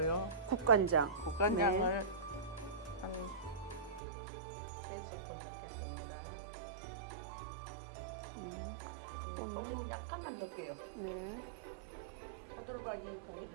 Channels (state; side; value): drops out; left; at 4.0 s